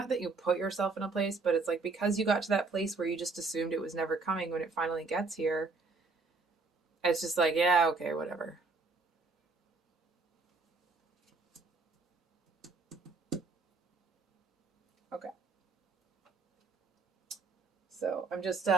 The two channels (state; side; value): quieter; left; 4.0 dB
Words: that you put yourself in a place, but it's like because you got to that place where you just assumed it was never coming, when it finally gets here, it's just like, yeah, okay, whatever. Okay. So I'm just